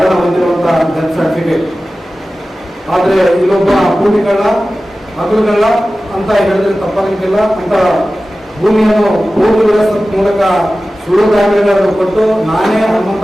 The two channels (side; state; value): both; normal; correlation 0.95